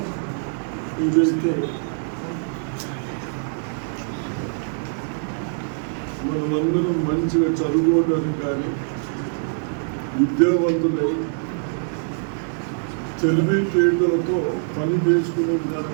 ఇదైతే మనమందరం మంచిగా చదువుకోవడానికి కానీ విద్యావంతులై తెలివితేటలతో పని చేసుకునే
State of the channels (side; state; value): left; silent; digital silence